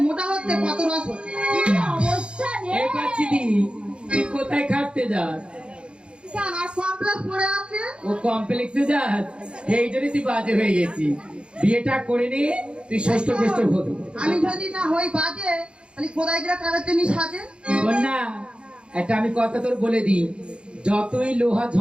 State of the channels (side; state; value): left; late; 0.056 ms